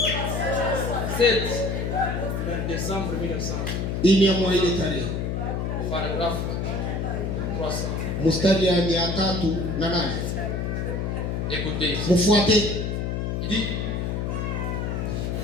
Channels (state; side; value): noise; left; hum, 1 dB below the sound